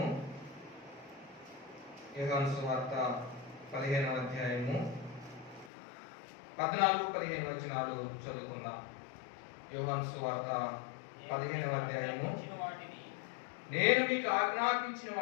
యోహాను సువార్త 15వ అధ్యాయము 14-15 వచనాలు చదువుకుందాం. యోహాను సువార్త 15వ అధ్యాయము. నేను మీకు ఆజ్ఞాపించిన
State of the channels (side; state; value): right; drops out; at 5.7 s